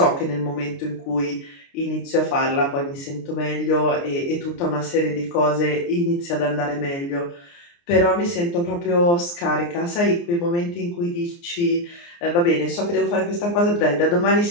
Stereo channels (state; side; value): late; right; 29 ms